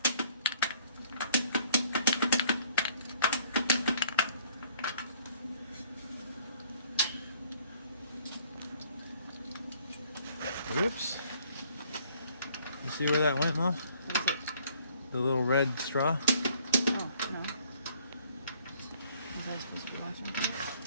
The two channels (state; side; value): inverted; both; correlation -0.60